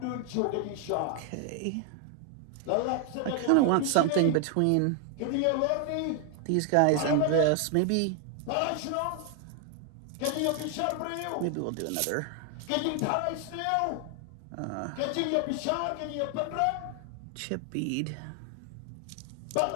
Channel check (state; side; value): different; both; correlation 0.00